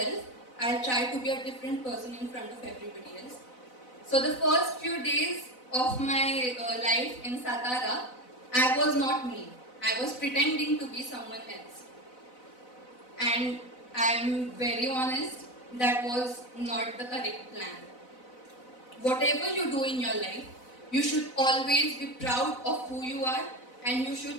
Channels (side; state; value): right; late; 4.0 ms